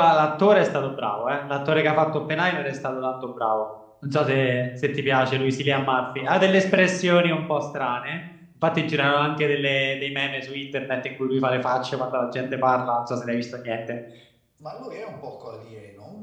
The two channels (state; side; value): identical; both; correlation 1.00